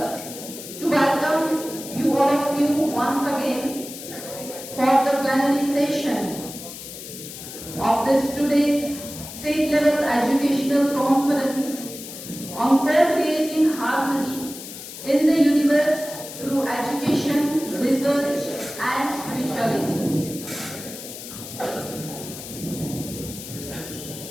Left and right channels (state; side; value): noise; left; hiss, 12 dB below the sound